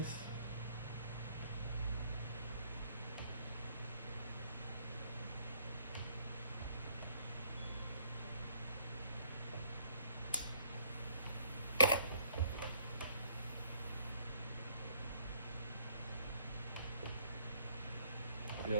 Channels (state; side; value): inverted; both; correlation -0.64